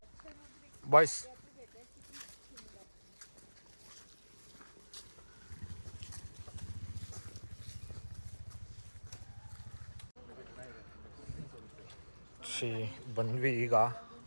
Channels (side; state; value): both; inverted; correlation -1.00